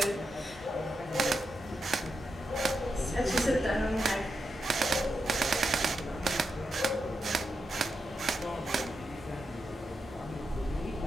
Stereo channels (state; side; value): normal; both; correlation 0.86